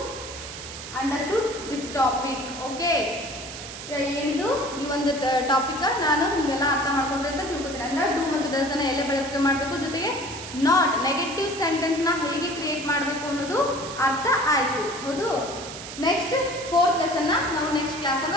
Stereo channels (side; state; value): right; noise; hiss, 11 dB below the sound